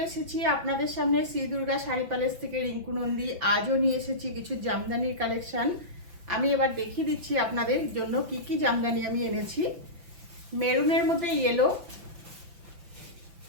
এসেছি আপনাদের সামনে শ্রী দুর্গা শাড়ি প্যালেস থেকে রিঙ্কু নন্দী। আজও নিয়ে এসেছি কিছু জামদানির কালেকশন। আমি এবার দেখিয়ে দিচ্ছি আপনাদের জন্য কি কি জামদানি আমি এনেছি। মেরুনের মধ্যে ইয়েলো,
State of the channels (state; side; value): late; left; 5.9 ms